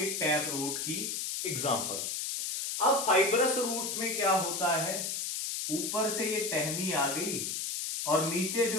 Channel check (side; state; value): left; noise; hiss, 2 dB below the sound